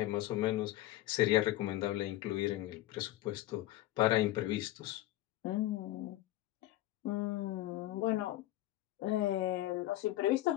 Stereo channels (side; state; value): right; quieter; 15.7 dB